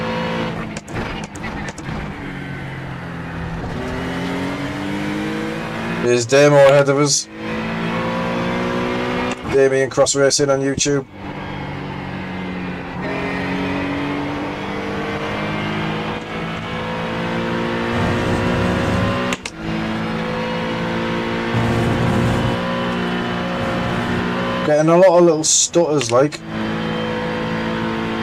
There's Damo ahead of us. Damien Cross Racing on YouTube. Getting a lot of little stutters like.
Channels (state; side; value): identical; both; correlation 1.00